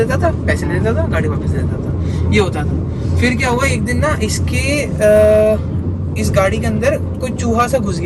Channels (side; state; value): both; identical; correlation 1.00